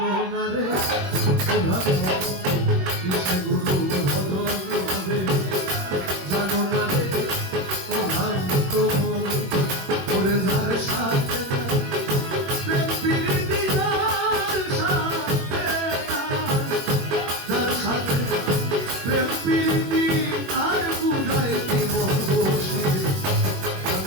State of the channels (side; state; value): left; late; 21 ms